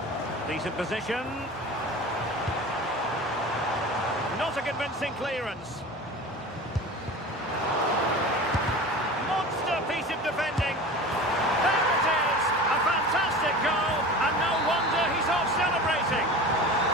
Decent position. Not a convincing clearance. Monster piece of defending. There it is. A fantastic goal. And no wonder he's off celebrating.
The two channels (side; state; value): both; normal; correlation 0.35